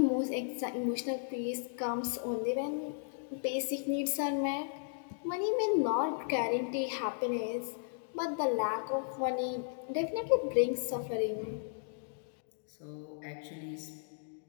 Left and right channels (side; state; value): right; silent; digital silence